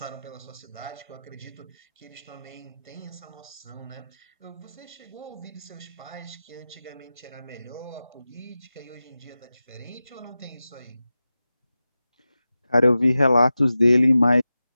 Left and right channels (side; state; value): both; inverted; correlation -0.94